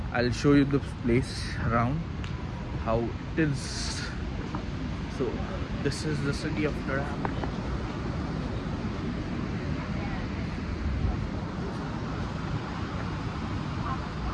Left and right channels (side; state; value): both; identical; correlation 1.00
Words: I will show you the place around how it is. So this is the city of ड्युरॅम.